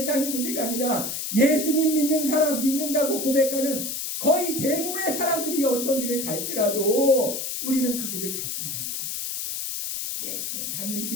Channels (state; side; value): noise; left; hiss, 4 dB below the sound